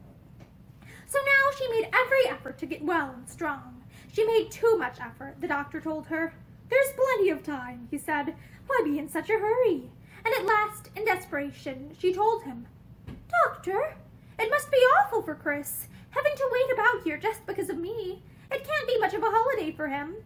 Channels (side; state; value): both; identical; correlation 1.00